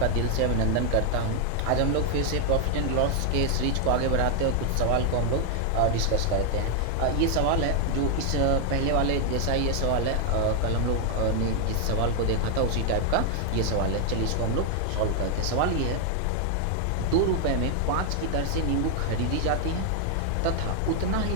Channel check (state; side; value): different; both; correlation 0.00